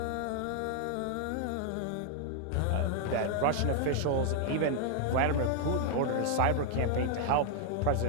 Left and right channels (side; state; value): both; different; correlation 0.00